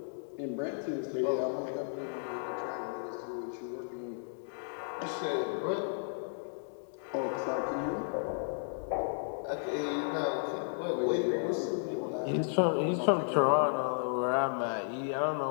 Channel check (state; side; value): silent; right; digital silence